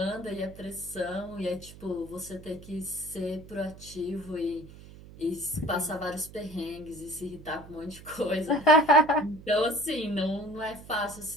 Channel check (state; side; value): noise; right; hum, 18 dB below the sound